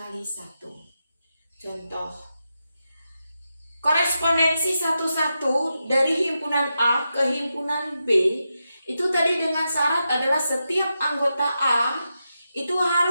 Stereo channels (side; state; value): both; inverted; correlation -0.88